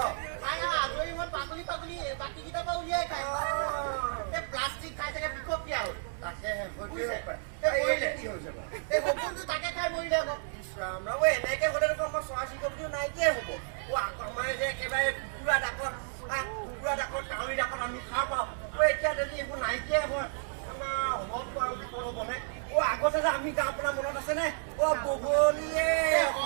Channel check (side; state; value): left; silent; digital silence